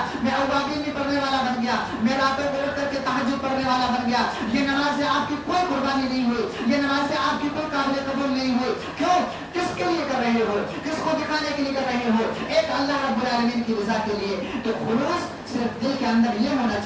میں اوابین بھی پڑھنے والا بن گیا, میں راتوں کو اٹھ کر کے تہجد پڑھنے والا بن گیا. یہ نماز سے آپ کی کوئی قربانی نہیں ہوئی, یہ نماز سے آپ کی کوئی قابل قبول نہیں ہوئی. کیوں؟ کس کے لیے کر رہے ہو, کس کو دکھانے کے لیے کر رہے ہو؟ ایک اللہ رب العالمین کی رضا کے لیے. تو خلوص صرف دل کے اندر یہ ہونا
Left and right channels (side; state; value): both; identical; correlation 1.00